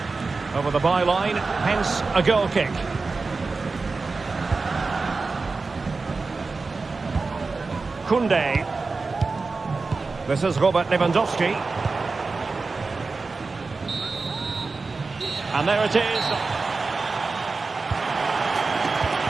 Over the byline, hence a goal kick. Koundé. This is Robert Lewandowski. And there it is.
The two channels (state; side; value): quieter; left; 4.0 dB